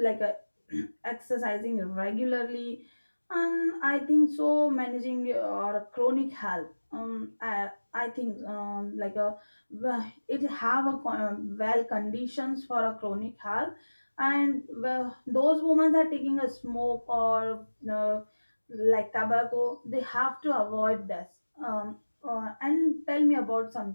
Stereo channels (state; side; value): inverted; both; correlation -1.00